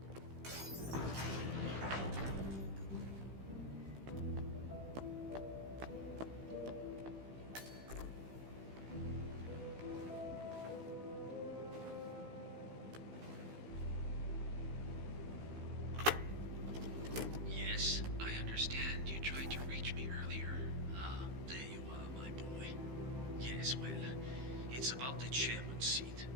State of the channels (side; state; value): left; late; 15 ms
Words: Yes, I understand. You tried to reach me earlier. Ah, there you are, my boy. Yes, well, it's about the chairman's seat.